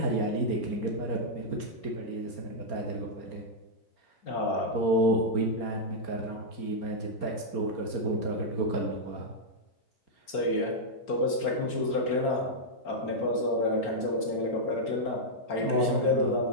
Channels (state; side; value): late; right; 4.4 ms